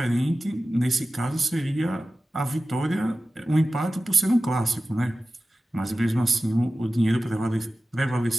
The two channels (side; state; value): both; normal; correlation 0.95